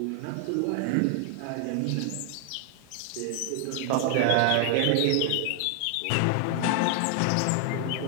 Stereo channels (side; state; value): both; different; correlation 0.00